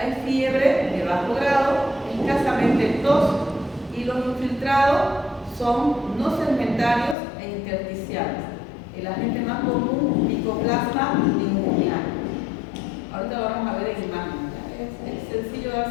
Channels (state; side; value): drops out; right; at 7.2 s